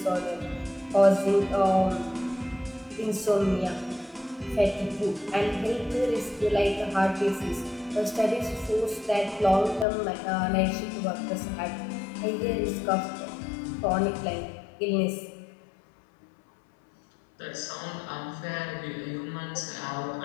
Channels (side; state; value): right; drops out; at 9.9 s